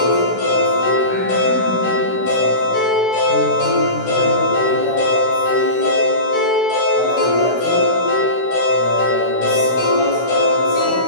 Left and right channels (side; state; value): right; late; 16 ms